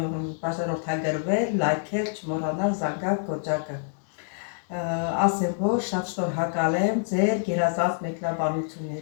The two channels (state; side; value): silent; right; digital silence